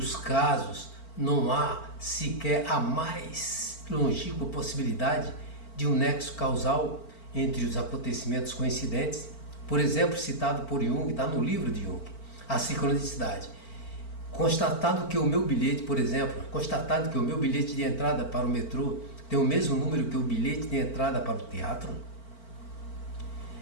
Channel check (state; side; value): late; right; 4.4 ms